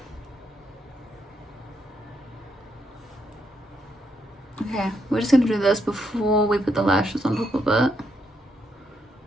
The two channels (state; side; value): normal; both; correlation 0.78